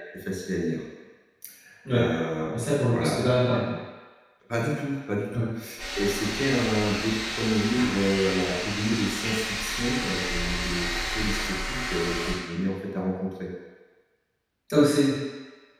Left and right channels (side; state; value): both; identical; correlation 1.00